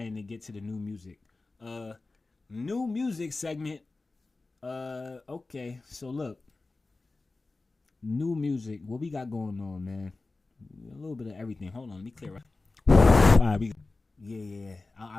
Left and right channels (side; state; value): right; quieter; 3.5 dB